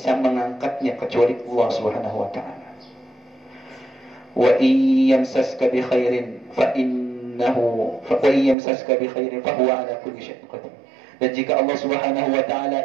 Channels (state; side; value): drops out; left; at 8.6 s